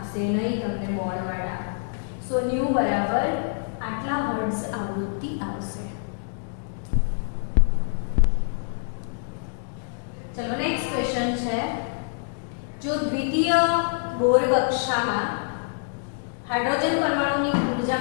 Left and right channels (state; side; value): silent; right; digital silence